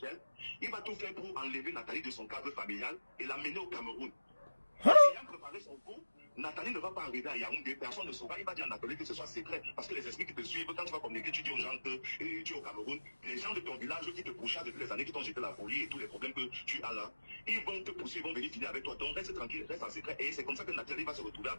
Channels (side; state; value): both; inverted; correlation -1.00